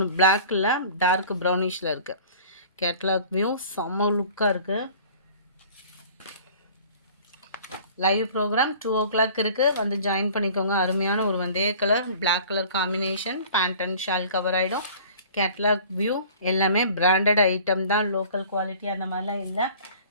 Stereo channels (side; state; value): both; inverted; correlation -0.47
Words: பிளாக்கில் டார்க் ப்ரௌனிஷில் இருக்குது. கேட்லாக் வியூ செம்ம லுக்காக இருக்குது. லைவ் ப்ரோக்ராம் 2 o'clock இருக்குது. வந்து ஜாயின் பண்ணிக்கோங்க. அருமையான ஒரு வந்தே colour black colour combination. Pant and shawl cover ஆகிடும். கேட்லாக் வியூ எல்லாமே பிராண்டட் ஐட்டம் தான். லோக்கல் குவாலிட்டி அந்த மாதிரிலாம் இல்லை.